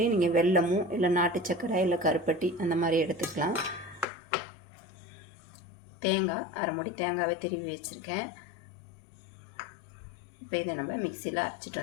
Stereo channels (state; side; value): drops out; right; at 4.0 s